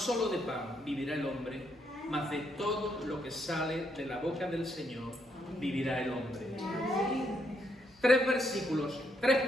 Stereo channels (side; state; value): both; normal; correlation 0.76